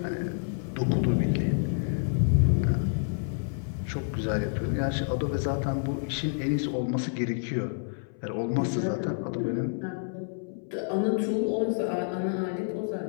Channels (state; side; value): silent; right; 59 dB below the other